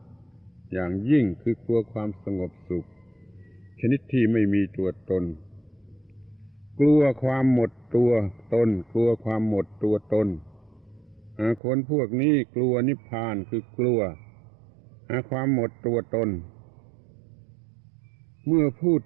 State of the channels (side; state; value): left; drops out; at 11.6 s